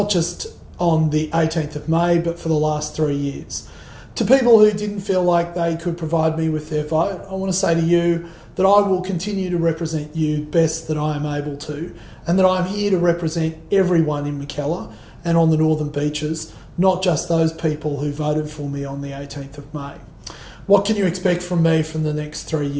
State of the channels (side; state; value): both; identical; correlation 1.00